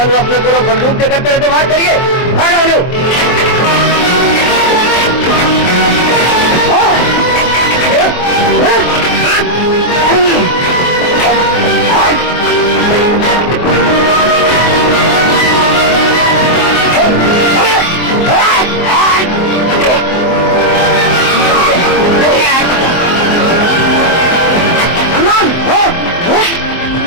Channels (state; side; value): late; right; 24 ms